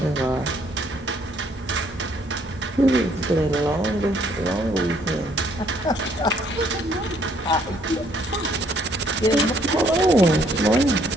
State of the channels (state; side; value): normal; both; correlation 0.65